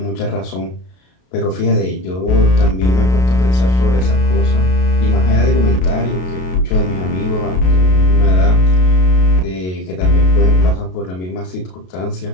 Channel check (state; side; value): late; right; 33 ms